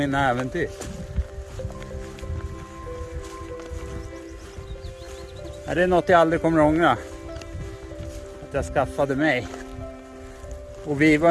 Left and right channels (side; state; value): both; identical; correlation 1.00